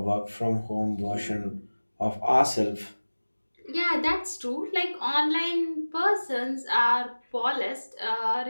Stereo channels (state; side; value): inverted; both; correlation -1.00